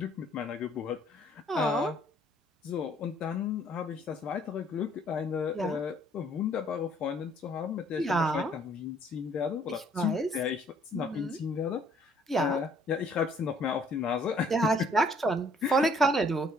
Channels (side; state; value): both; normal; correlation 0.61